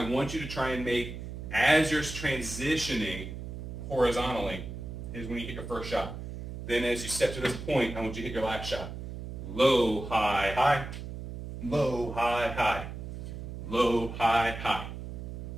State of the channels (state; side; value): noise; right; hum, 8 dB below the sound